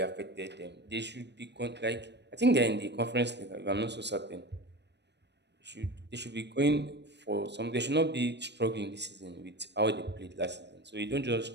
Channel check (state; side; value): late; left; 0.50 ms